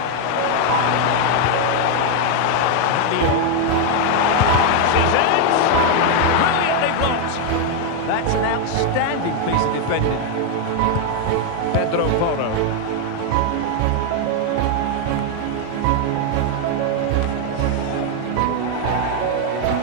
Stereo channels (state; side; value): different; both; correlation 0.01